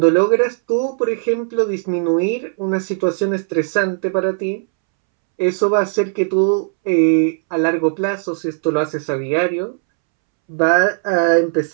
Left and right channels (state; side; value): silent; left; 68 dB below the other